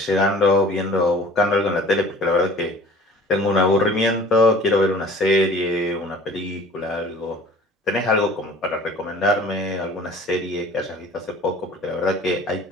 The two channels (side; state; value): both; normal; correlation 0.47